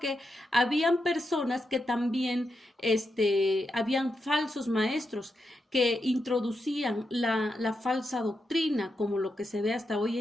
habían personas que también habían falsos maestros que introducían la falsa doctrina, como lo que se ve hasta hoy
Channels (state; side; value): normal; both; correlation 0.86